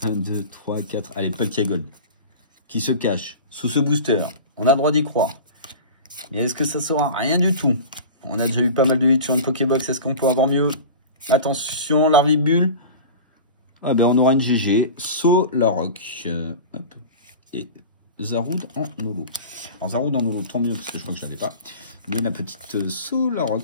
1, 2, 3, 4. Allez, Palkia Gold. Qui se cache sous ce booster. On a le droit d'y croire. Et est-ce que ça sera rien du tout? On a déjà eu pas mal de hits sur une Pokébox. Est-ce qu'on peut avoir mieux? Attention, Larvibule. Ah ben on aura une GG. Solrock. Hop. Et Zaroud en holo. Alors Zaroud en holo, tant mieux parce que je crois que je l'avais pas. Mais la petite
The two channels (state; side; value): inverted; both; correlation -0.34